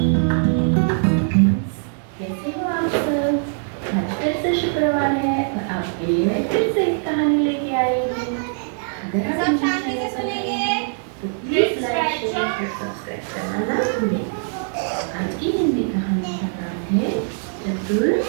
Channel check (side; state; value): left; silent; 64 dB below the other